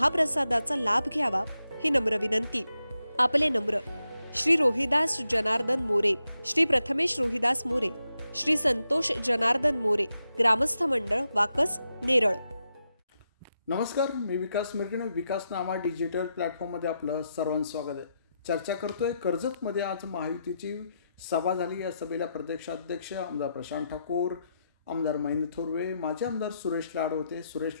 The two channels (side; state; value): both; inverted; correlation -0.85